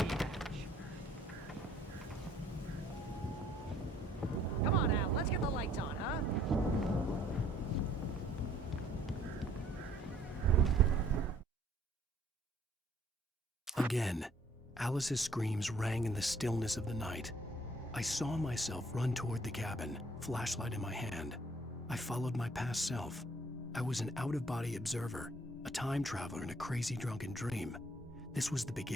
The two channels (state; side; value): normal; both; correlation 0.60